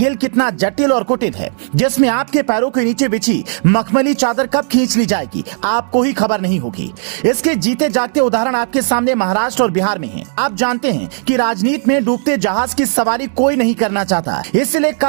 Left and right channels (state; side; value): silent; left; digital silence